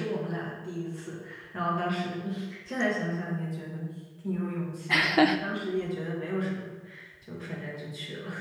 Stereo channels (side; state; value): both; identical; correlation 1.00